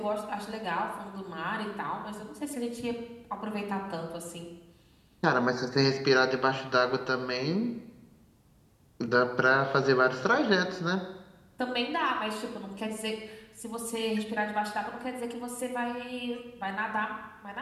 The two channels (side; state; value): both; identical; correlation 1.00